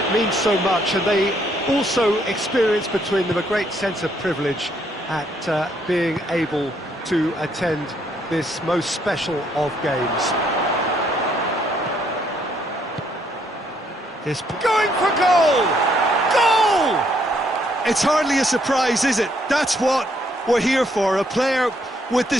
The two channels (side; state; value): both; normal; correlation 0.70